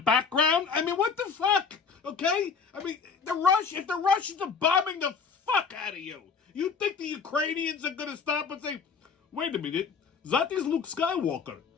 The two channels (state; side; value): quieter; right; 5.8 dB